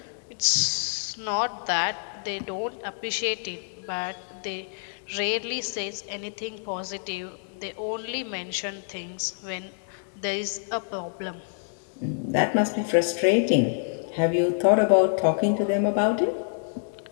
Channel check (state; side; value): silent; right; digital silence